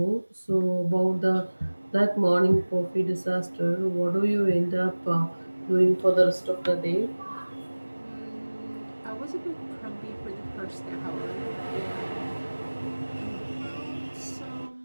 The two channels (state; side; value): inverted; both; correlation -1.00